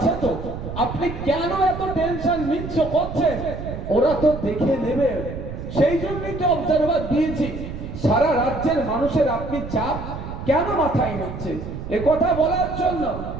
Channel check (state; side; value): noise; right; rumble, 8 dB below the sound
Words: তো, আপনি কেন এত টেনশন নিচ্ছ করছেন? ওরা তো দেখে নেবে, সেই জন্যই তো অবজারভার দিয়েছি। সারা রাজ্যের মানুষের আপনি চাপ কেন মাথায় নিচ্ছে? এ কথা বলার জন্য